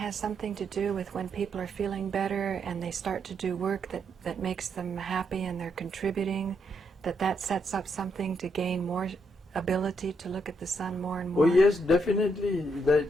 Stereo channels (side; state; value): both; normal; correlation 0.78